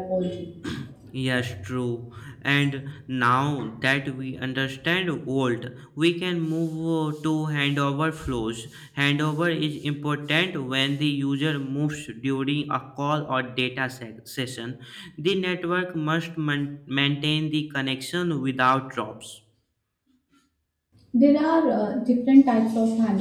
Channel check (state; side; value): identical; both; correlation 1.00